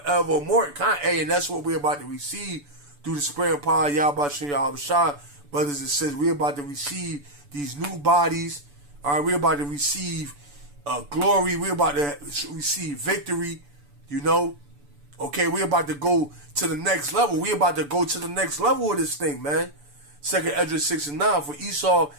And that's what we're about to receive through the supreme power of Yahweh Shem Yahweh Shah. Brothers and sisters, we're about to receive these new bodies. All right, we're about to receive glory. We're about to receive victory. Okay, we're about to go to the next level. We're about to go to the next level of this thing, man. 2nd Ezra 6 and 9. For Esau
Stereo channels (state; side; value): late; left; 6.9 ms